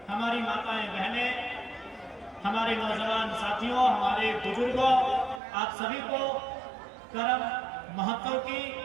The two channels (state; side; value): drops out; left; at 5.4 s